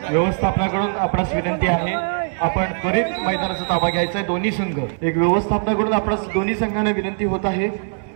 व्यवस्थापनाकडून आपणास विनंती आहे, आपण त्वरित मैदानाचा ताबा घ्यायचा आहे। दोन्ही संघ एक व्यवस्थापनाकडून आपणास दोन्ही संघांना विनंती होत आहे।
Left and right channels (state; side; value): silent; left; 65 dB below the other